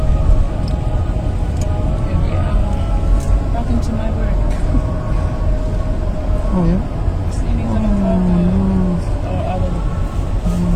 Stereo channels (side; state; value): both; identical; correlation 1.00